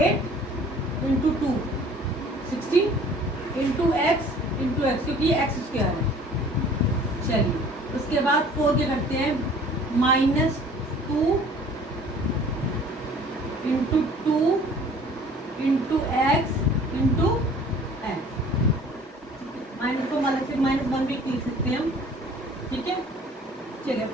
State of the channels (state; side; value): normal; both; correlation 0.50